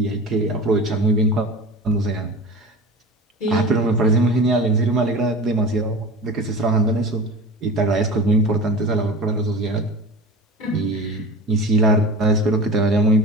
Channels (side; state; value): both; normal; correlation 0.33